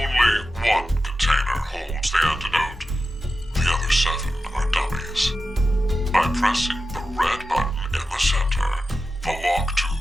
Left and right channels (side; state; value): both; normal; correlation 0.92